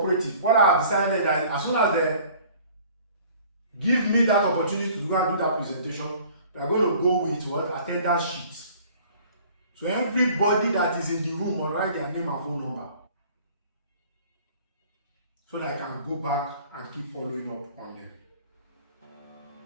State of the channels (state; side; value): inverted; both; correlation -0.51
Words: what I have decided that as soon as they give me that opportunity to go and do that presentation, we are going to go with what? Attendance sheets. So everybody that is in the room will write their name and phone number, so that I can go back and keep following up on them.